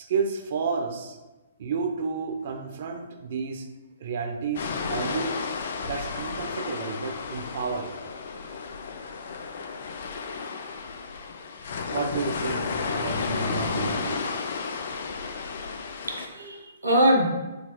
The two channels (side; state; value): both; inverted; correlation -0.58